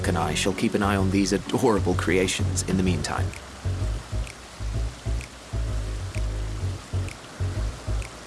and I shall keep an eye on these adorable creations in the meantime.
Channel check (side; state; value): both; identical; correlation 1.00